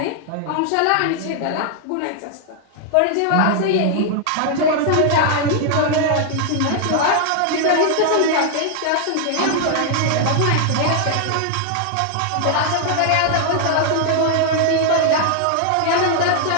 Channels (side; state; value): both; different; correlation 0.00